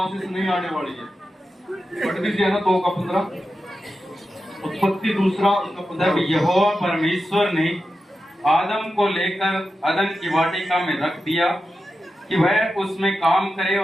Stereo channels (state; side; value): normal; both; correlation 0.91